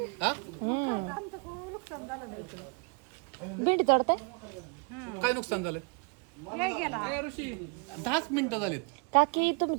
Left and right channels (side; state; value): left; quieter; 33.9 dB